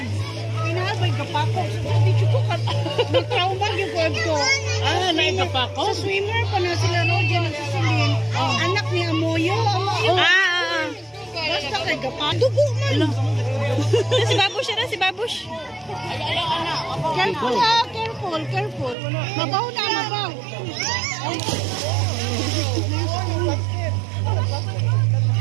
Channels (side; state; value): left; drops out; at 18.9 s